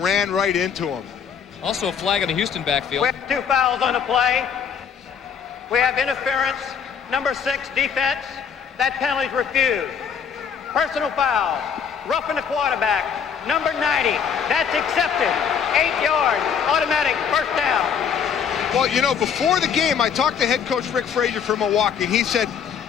right into him. Also a flag in the Houston backfield. We have 2 fouls on the play. We have interference, number 6 defense. That penalty's refused. Personal foul, roughing the quarterback, number 90. That's accepted. 8 yards, automatic first down. Well, you know, before the game, I talked to head coach Rick Frazier from Milwaukee, and he said,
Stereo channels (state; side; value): quieter; right; 7.3 dB